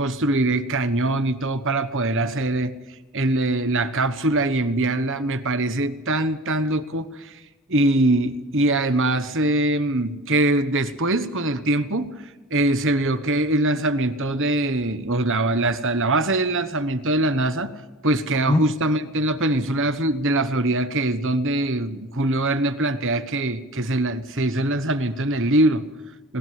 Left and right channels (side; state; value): both; normal; correlation 0.38